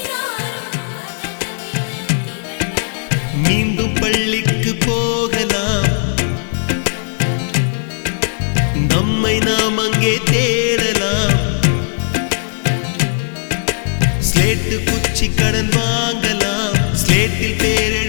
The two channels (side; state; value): right; silent; digital silence